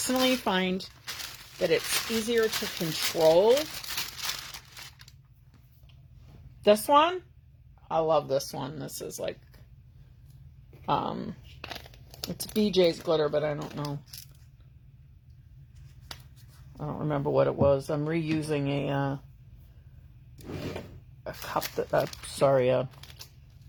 find that it's easier to control. This one, I love this one. This is like, it's BJ's glitter, but I don't know. I don't remember what it was. I'm reusing a cup that, a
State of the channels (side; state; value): both; identical; correlation 1.00